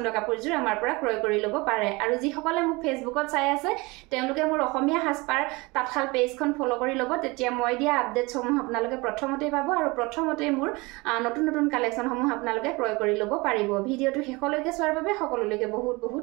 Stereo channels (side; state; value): left; quieter; 24.6 dB